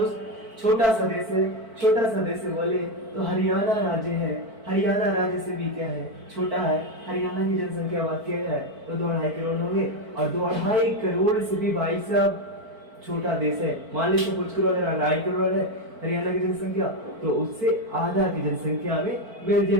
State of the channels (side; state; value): left; late; 4.5 ms